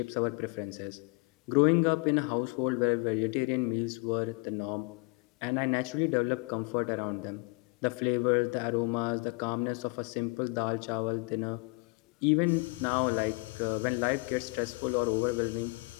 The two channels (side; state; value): right; quieter; 30.0 dB